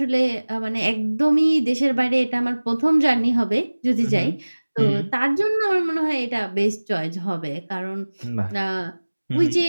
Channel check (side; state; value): both; inverted; correlation -1.00